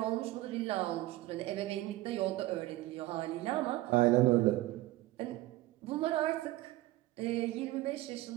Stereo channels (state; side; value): quieter; left; 17.4 dB